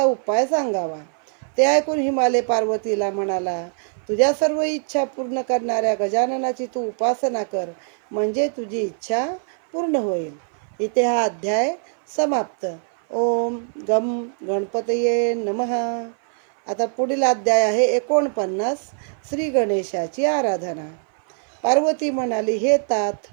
उपाय सांगावा. ते ऐकून हिमालय पार्वतीला म्हणाला, तुझ्या सर्व इच्छा पूर्ण करणाऱ्या गजाननाची तू उपासना कर, म्हणजे तुझी इच्छा पूर्ण होईल. इथे हा अध्याय समाप्त. ओम गम गणपतये नमः. आता पुढील अध्याय आहे 49, श्री गणेशाची आराधना. पार्वती म्हणाली, हे तात,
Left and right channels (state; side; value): silent; left; 59 dB below the other